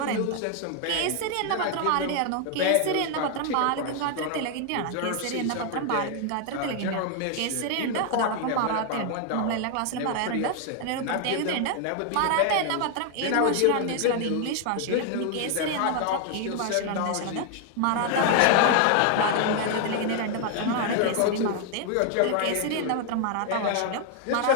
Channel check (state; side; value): different; both; correlation 0.00